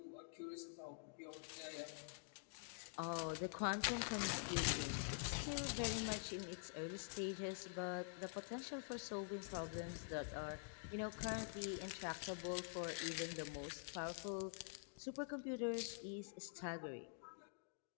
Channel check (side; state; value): right; silent; digital silence